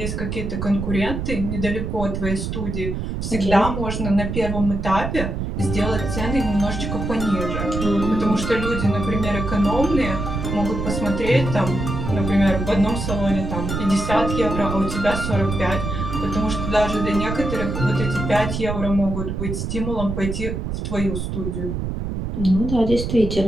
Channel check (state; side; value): noise; right; rumble, 4 dB below the sound